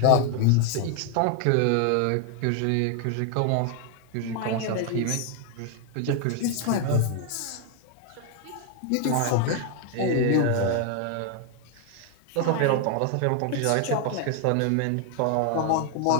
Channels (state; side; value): different; both; correlation 0.00